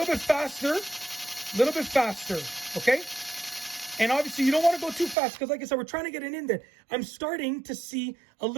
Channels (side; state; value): left; drops out; at 5.2 s